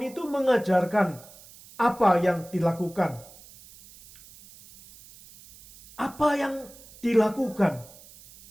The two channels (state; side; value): noise; right; hiss, 22 dB below the sound